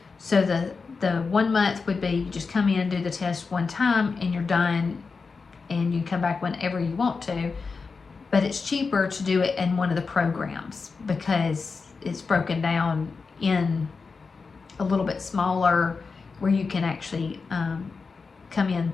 So the 1 month would be you just come in, do the test one time, and you're done, and you come back whenever you want to. But it's cheaper to do it in one of the programs because it's broken down in a little bit smaller, where you can actually come in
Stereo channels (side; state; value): right; quieter; 4.7 dB